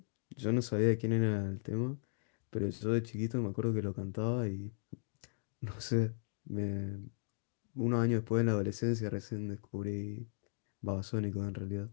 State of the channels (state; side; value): silent; right; digital silence